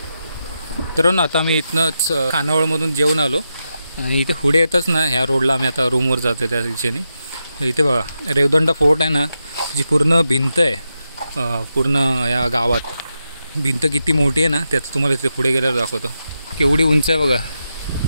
तर ना आता मी इथनंच खानावळमधून जेवून आलो आणि इथे पुढे येतच ना ह्या रोडला आम्ही आता रूमवर जातो त्या दिशेने. इथे बघा रेवदंडा फोर्ट आहे ना, जी पूर्ण भिंत आहे पूर्ण या गावात. भिंत किती मोठी आहे ना त्यात तुम्हाला इथे पुढे गेल्यावर दाखवतो. केवढी उंच आहे बघा,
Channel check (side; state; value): both; inverted; correlation -0.87